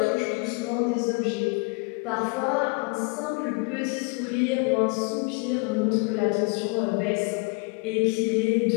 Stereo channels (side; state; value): right; quieter; 32.0 dB